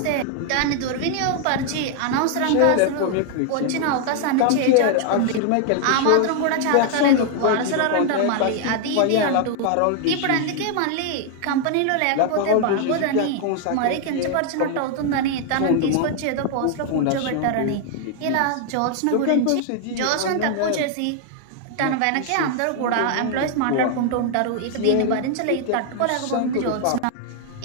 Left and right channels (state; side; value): different; both; correlation 0.00